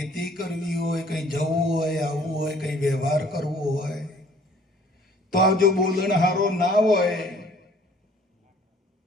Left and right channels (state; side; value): normal; both; correlation 0.56